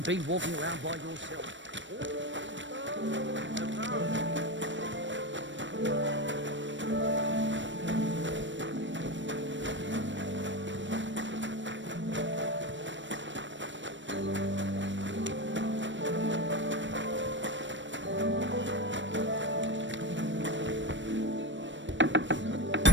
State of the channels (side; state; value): left; late; 0.54 ms